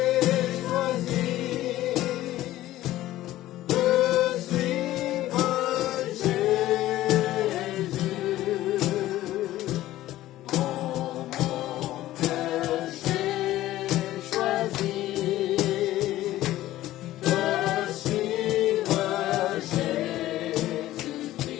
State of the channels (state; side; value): quieter; right; 15.0 dB